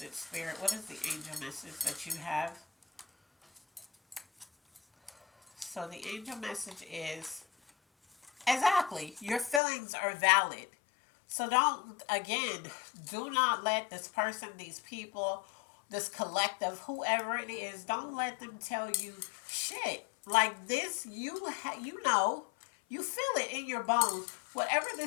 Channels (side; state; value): right; drops out; at 9.6 s